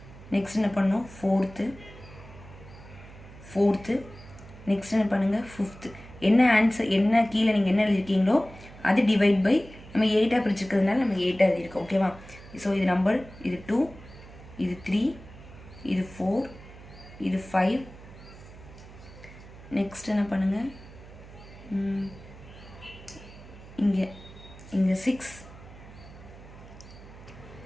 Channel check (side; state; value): right; noise; hum, 18 dB below the sound